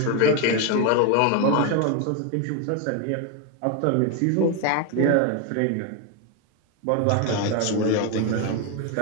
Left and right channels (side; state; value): both; different; correlation 0.01